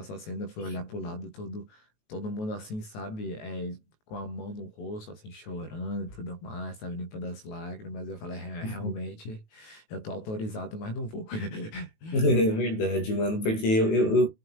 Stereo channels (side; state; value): right; late; 19 ms